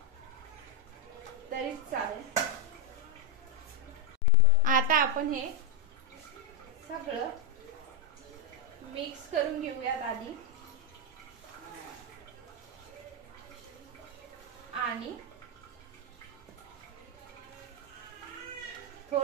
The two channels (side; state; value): both; normal; correlation 0.01